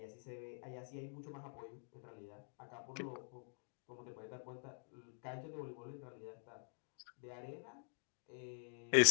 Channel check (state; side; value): silent; right; digital silence